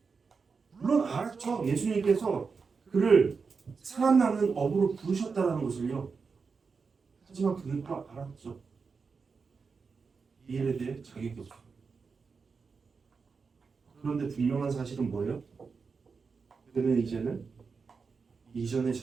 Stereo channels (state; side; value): quieter; left; 5.1 dB